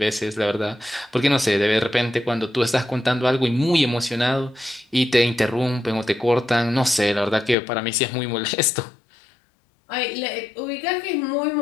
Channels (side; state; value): right; drops out; at 7.6 s